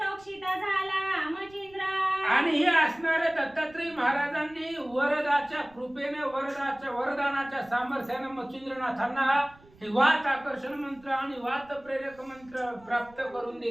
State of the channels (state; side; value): noise; right; rumble, 26 dB below the sound